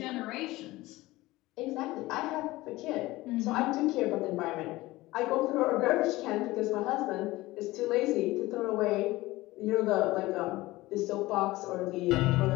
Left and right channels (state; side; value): quieter; right; 18.9 dB